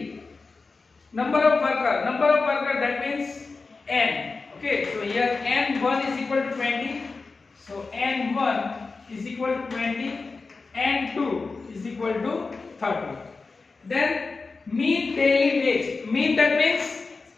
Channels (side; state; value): right; quieter; 4.1 dB